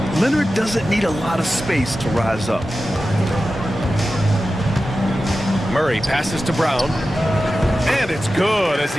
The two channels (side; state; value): both; normal; correlation 0.93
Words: Leonard doesn't need a lot of space to rise up. Murray passes to Brown. And it's good as